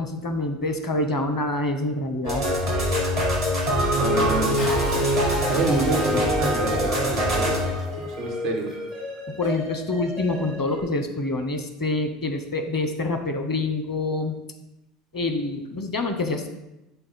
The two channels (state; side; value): normal; both; correlation 0.34